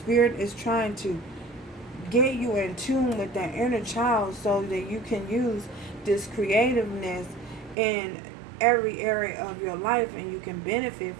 is trying to get you in tune with that inner child so that you can use this creativeness in every area of your life and you can benefit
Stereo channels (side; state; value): left; drops out; at 7.8 s